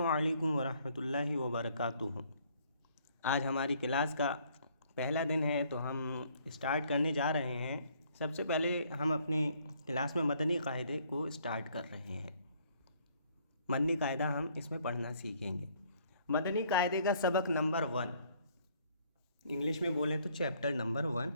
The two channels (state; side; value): inverted; both; correlation -0.64